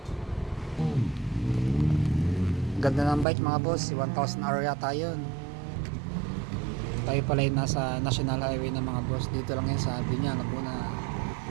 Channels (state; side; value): drops out; left; at 3.2 s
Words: Ganda ng bike mga boss, 1,000 area tayo. Tayo pala yung nasa National Highway ng mga boss. Dito lang yun sa Binyang, Laguna.